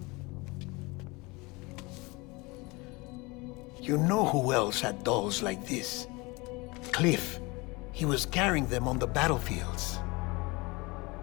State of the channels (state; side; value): quieter; right; 25.0 dB